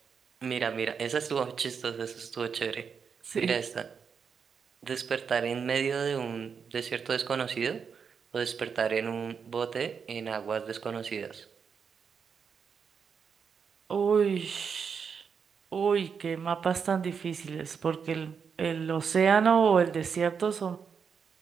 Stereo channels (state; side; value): quieter; left; 6.4 dB